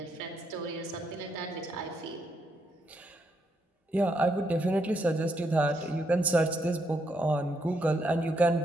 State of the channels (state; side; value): normal; both; correlation 0.77